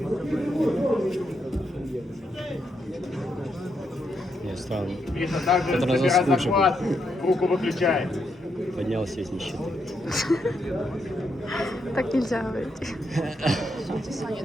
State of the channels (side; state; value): both; normal; correlation 0.80